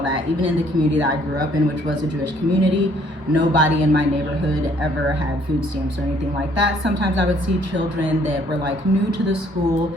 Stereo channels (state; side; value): late; left; 1.1 ms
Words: Even in the community that I grew up in, which was a Jewish community, nobody in my neighborhood ever had food stamps or anything like that. Sometimes I would see children that were like new to the school,